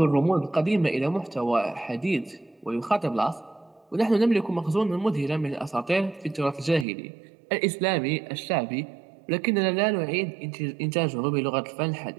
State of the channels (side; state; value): left; drops out; at 6.9 s